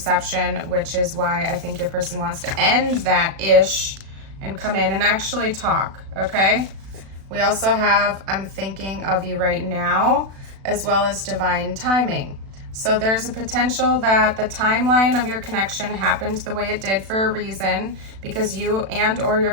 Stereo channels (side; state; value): left; late; 36 ms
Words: which is why I think your person wants to end that ish and come in and actually talk, okay? We also have, I'm thinking of you right now, as well as divine timing. So there's a potential that the timeline of your connection happened the way it did for a reason, because you and or your